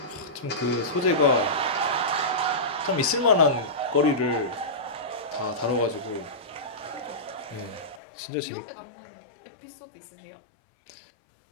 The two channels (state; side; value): drops out; right; at 8.0 s